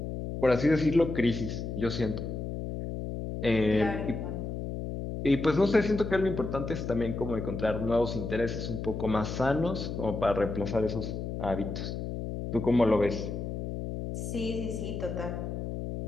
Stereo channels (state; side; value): noise; left; hum, 5 dB below the sound